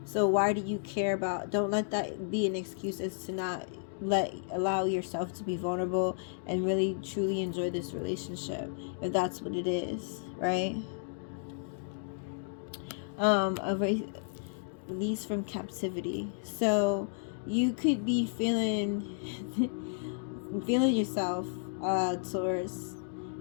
So why do you care about, don't let that be an excuse as to not allow yourself to be vulnerable and really truly enjoy this relationship, if that's what it is, right? Release from captivity. So you could be feeling yourself, Taurus.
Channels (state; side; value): silent; right; digital silence